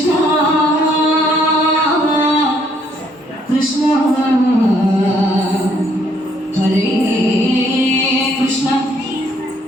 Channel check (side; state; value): both; normal; correlation 0.67